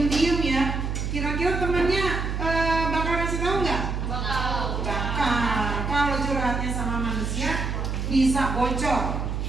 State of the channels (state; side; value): noise; right; hum, 2 dB below the sound